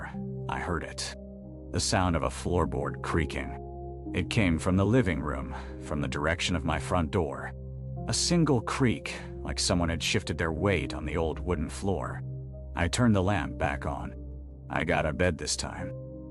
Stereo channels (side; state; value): both; identical; correlation 1.00